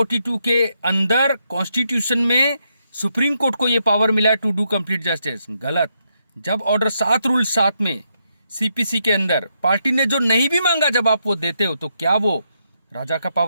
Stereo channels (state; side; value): inverted; both; correlation -0.80